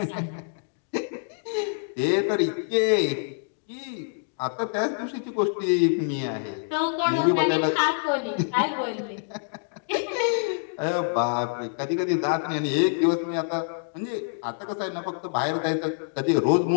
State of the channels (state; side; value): silent; right; digital silence